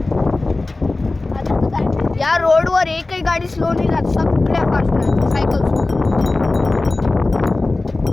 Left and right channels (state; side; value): quieter; right; 3.2 dB